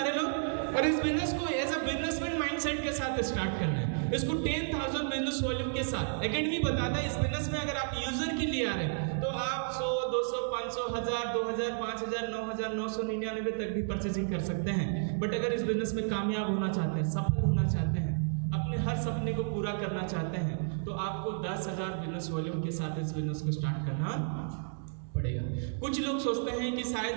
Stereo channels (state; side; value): silent; left; digital silence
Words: लोग। और इस बिजनेस को एज अ बिजनेसमैन माइंडसेट के साथ स्टार्ट करना है। इसको 10,000 बिजनेस वॉल्यूम के साथ एकेडमी बताता है। इस बिजनेस में अगर आप यूजर के लिए आ रहे हैं तो आप 100, 200, 500, 1000, 2000, 5000, 9,999 तक भी परचेजिंग कर सकते हैं। बट अगर इस बिजनेस में कामयाब होना चाहते हैं, सफल होना चाहते हैं, अपने हर सपने को पूरा करना चाहते हैं, तो आपको 10,000 बिजनेस वॉल्यूम के साथ इस बिजनेस को स्टार्ट करना पड़ेगा। कुछ लोग सोचते हैं कि